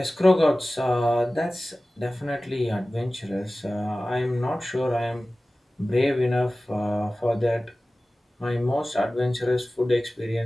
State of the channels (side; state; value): both; normal; correlation 0.97